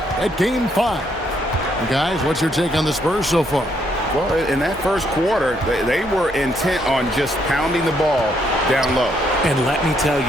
at Game 5. And guys, what's your take on the Spurs so far? Well, in that first quarter, they were intent on just pounding the ball down low. And let me tell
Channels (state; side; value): normal; both; correlation 0.72